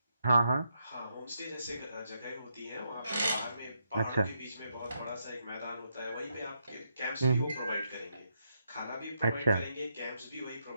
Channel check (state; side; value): inverted; both; correlation -0.80